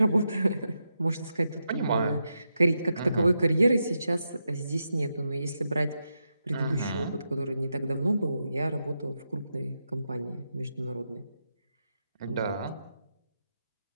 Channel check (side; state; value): both; inverted; correlation -0.86